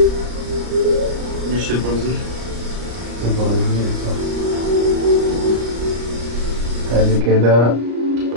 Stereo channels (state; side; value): late; left; 34 ms